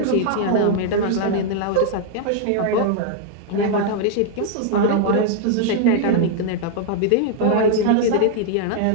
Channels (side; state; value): both; different; correlation 0.00